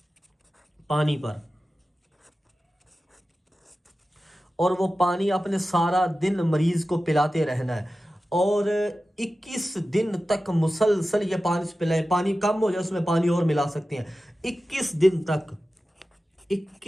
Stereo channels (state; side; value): normal; both; correlation 0.94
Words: پانی پر، اور وہ پانی آپ نے سارا دن مریض کو پلاتے رہنا ہے، اور 21 دن تک مسلسل یہ پانی پلائیں۔ پانی کم ہو جائے اس میں پانی اور ملا سکتے ہیں۔ 21 دن تک،